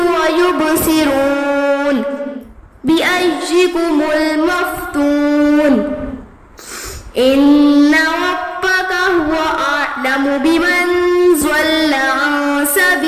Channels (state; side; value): identical; both; correlation 1.00